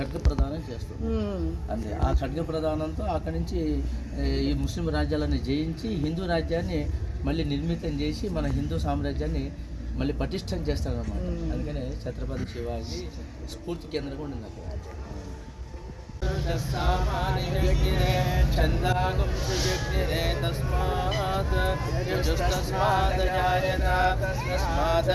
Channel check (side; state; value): both; identical; correlation 1.00